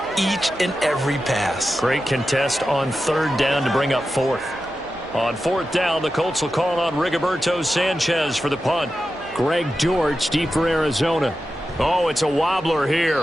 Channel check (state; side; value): noise; right; hum, 26 dB below the sound